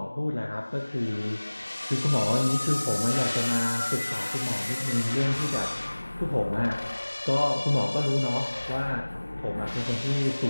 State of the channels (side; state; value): both; inverted; correlation -1.00